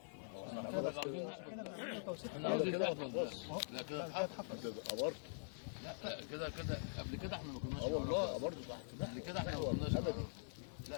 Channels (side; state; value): right; silent; digital silence